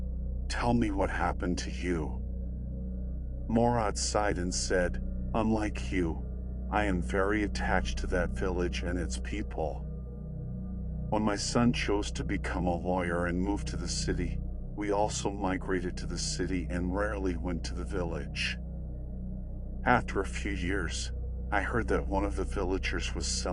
Tell me what happened to you.' Morad sighed and said, 'Unlike you, I am very attached to that village and its people. When my son chose to become a lawyer and moved to the city, we also migrated to the city and rarely went to the village. After a few years, I heard that one of the villagers was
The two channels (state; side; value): identical; both; correlation 1.00